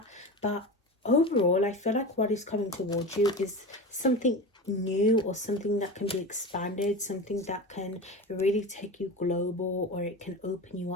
But overall, I feel like what is coming towards you is something new, or something that can be expanded, something that can really take you global, or it can open you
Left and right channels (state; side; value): normal; both; correlation 0.27